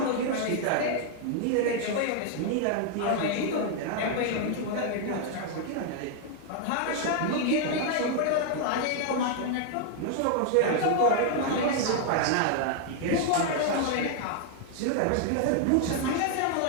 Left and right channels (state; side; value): different; both; correlation 0.00